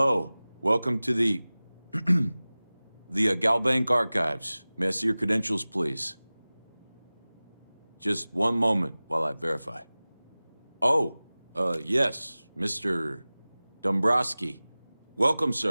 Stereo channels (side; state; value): both; inverted; correlation -0.98